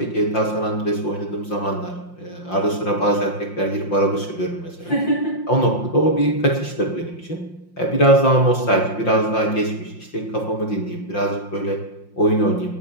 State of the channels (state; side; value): late; right; 5.7 ms